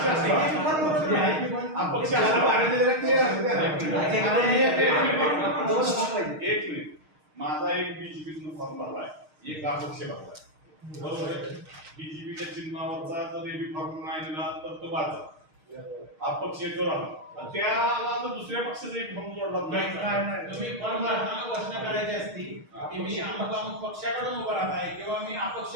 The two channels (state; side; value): late; left; 6.5 ms